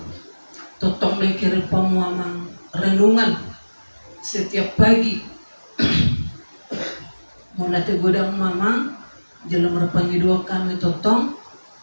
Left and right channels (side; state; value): both; inverted; correlation -1.00